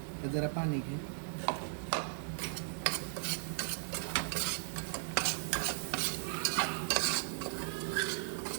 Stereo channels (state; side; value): silent; left; digital silence